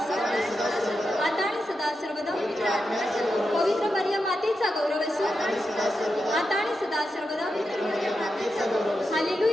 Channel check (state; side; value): normal; both; correlation 0.88